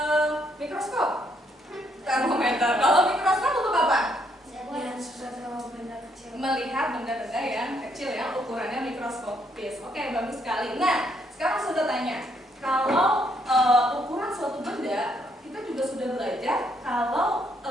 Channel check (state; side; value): normal; both; correlation 0.72